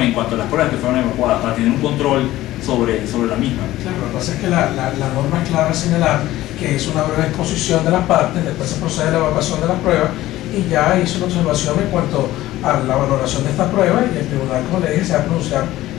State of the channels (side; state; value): right; quieter; 15.7 dB